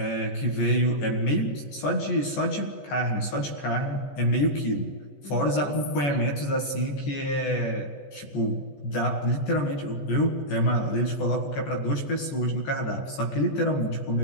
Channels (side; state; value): right; late; 14 ms